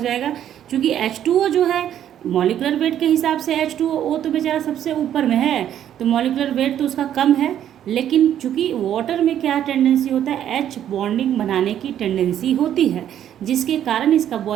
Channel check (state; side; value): quieter; left; 10.5 dB